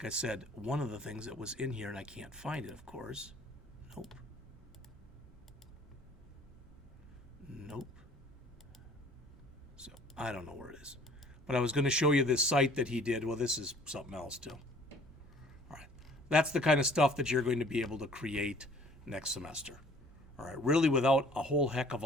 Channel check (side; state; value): both; normal; correlation 0.53